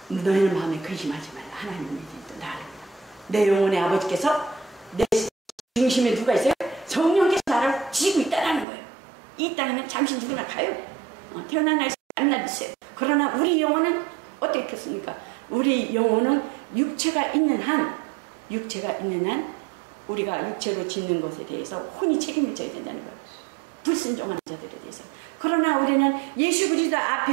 너희는 마음에 근심하지 말라. 하나님이 또 나를 내 영혼의 아버지께서 내 중심에 누가 있어요? 성령께서 나를 지고 있다는 거예요. 이 땅에는 잠시 누구나 가요. 태어난 날 만나 있어요. 그러나 우리 영혼은 어떻겠습니까? 우리 영혼은 육체가 있는 한 우리가 육체로 짓는 것에 대해서 혼이 책임을 져야 된다는 거예요. 불순종하는 자들에 대해서. 그러나 우리는 예수 그리스도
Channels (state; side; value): drops out; left; at 8.7 s